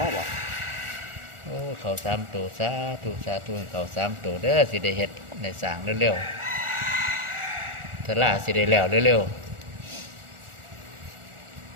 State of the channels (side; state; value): left; late; 1.4 ms